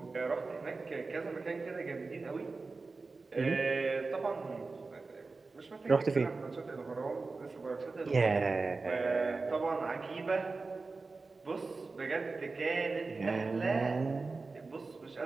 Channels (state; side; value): quieter; left; 3.9 dB